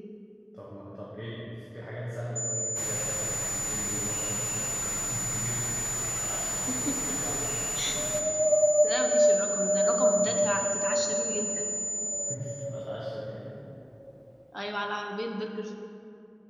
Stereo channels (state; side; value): identical; both; correlation 1.00